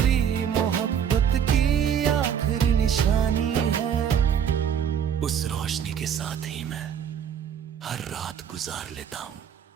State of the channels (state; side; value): quieter; left; 8.4 dB